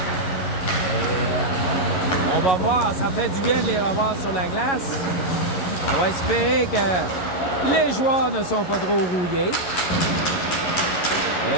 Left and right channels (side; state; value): right; late; 11 ms